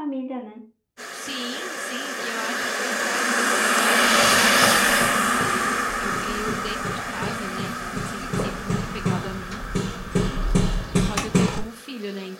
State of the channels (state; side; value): identical; both; correlation 1.00